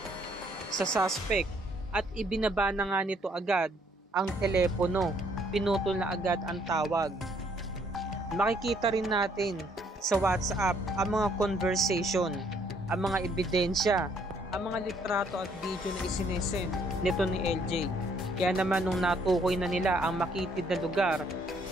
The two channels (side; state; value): both; normal; correlation 0.66